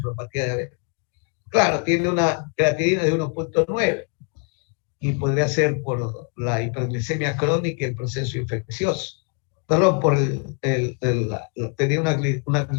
diabética. Claro, tiene una creatinina de 1.9 y podría ser por la hiperglicemia crónica y el proceso infeccioso. Perdón, tenía una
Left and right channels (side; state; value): right; quieter; 39.2 dB